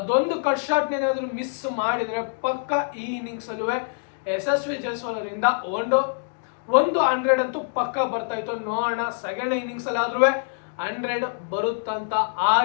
ಕಟ್ ಶಾಟ್ ಏನಾದ್ರು ಮಿಸ್ ಮಾಡಿದ್ರೆ ಪಕ್ಕ ಈ ಇನ್ನಿಂಗ್ಸ್ ಅಲ್ಲೂ ಯಶಸ್ವಿ ಜೈಸ್ವಾಲ್ ಅವರಿಂದ ಒಂದು 100 ಅಂತೂ ಪಕ್ಕ ಬರ್ತಾ ಇತ್ತು. ನೋಡೋಣ ಸೆಕೆಂಡ್ ಇನ್ನಿಂಗ್ಸ್ ಅಲ್ಲಿ ಆದ್ರೂ 100 ಬರುತ್ತಂತ.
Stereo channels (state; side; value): silent; right; digital silence